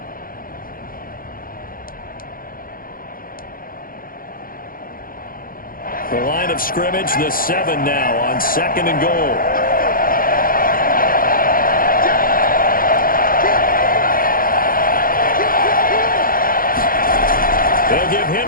The line of scrimmage, the 7 now on 2nd and goal. They'll give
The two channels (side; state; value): right; late; 0.41 ms